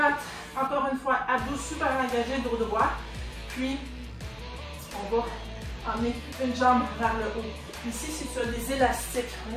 Encore une fois, abdos super engagés, dos droit. Puis, on va emmener une jambe vers le haut. Ici, si tu as des élastiques, un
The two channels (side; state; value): both; identical; correlation 1.00